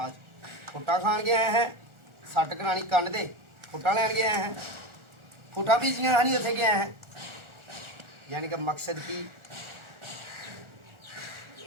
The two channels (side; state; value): left; late; 1.4 ms